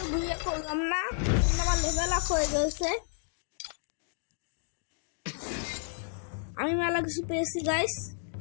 ভিডিও করলাম না লেভেল আপ হয়ে গেছে আমি মেলা কিছু পেয়েছি গাইস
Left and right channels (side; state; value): right; silent; 57 dB below the other